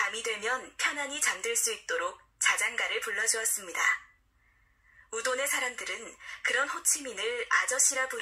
되면 편안히 잠들 수 있도록 자장가를 불러주었습니다. 우돈의 사람들은 그런 호치민을 아저씨라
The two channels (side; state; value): both; identical; correlation 1.00